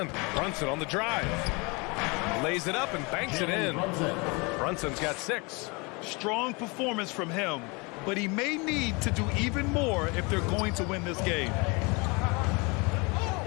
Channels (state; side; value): quieter; right; 28.5 dB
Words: Brunson on the drive. Lays it up and banks it in. Brunson's got 6. Strong performance from him, but he may need to do even more if they're going to win this game.